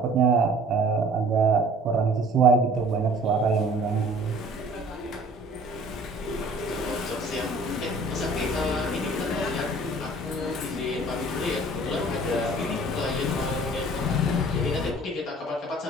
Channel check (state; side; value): normal; both; correlation 0.50